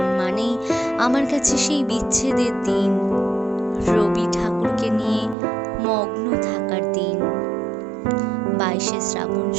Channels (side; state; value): left; drops out; at 5.4 s